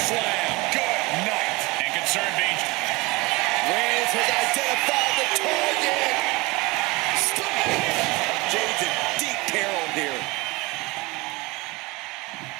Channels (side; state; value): left; quieter; 23.8 dB